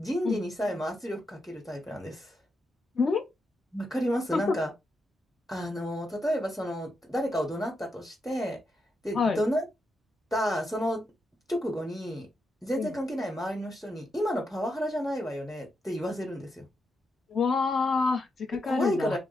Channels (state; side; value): normal; both; correlation 0.84